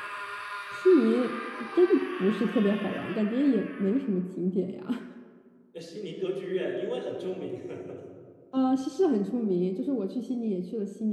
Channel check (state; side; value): identical; both; correlation 1.00